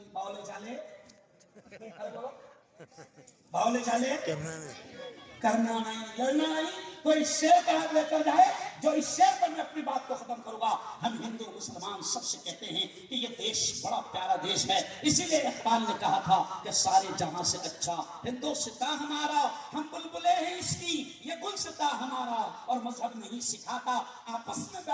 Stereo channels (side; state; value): both; identical; correlation 1.00